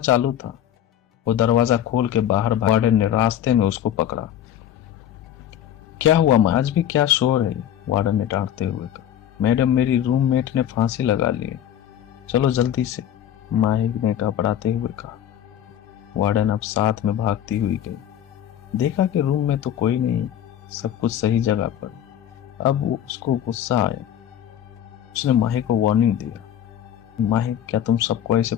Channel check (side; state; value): right; quieter; 10.6 dB